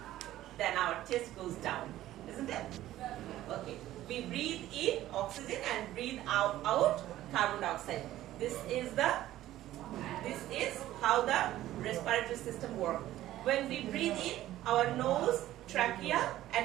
then our chest goes down. Isn't it? Okay. We breathe in oxygen and breathe out carbon dioxide. This is how the respiratory system works. When we breathe in, our nose, trachea,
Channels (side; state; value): left; quieter; 14.3 dB